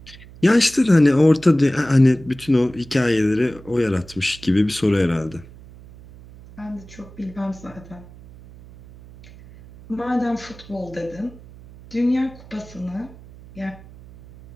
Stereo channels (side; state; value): right; noise; hum, 20 dB below the sound